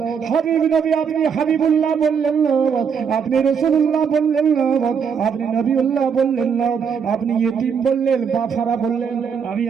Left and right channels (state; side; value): quieter; left; 6.7 dB